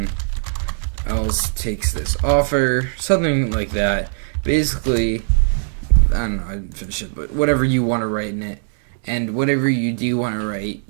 else takes this offer. Something like that. Basically, don't know, I didn't finish it, but whatever you want to write in it, and whatever you do want to write,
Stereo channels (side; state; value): left; silent; digital silence